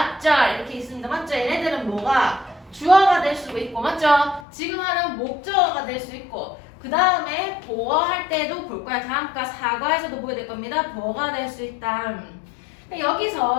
이렇게 있습니다. 맞죠? 얘네들은 뭐가? 주어가 될 수도 있고 맞죠? 지금 하는 목적어가 될 수 있고 그 다음에 보어할 때도 볼 거야. 다음과 사과에서도 보게 될 겁니다. 보어가 될 수 있다.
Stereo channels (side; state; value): right; drops out; at 4.5 s